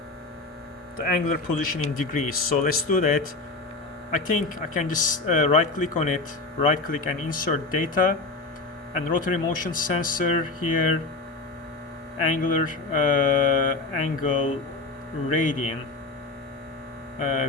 the angular position in degrees. So let's do that. I think I can just right click on it, right click and insert data, and rotary motion sensor here, angular angle radian,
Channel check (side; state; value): right; quieter; 3.4 dB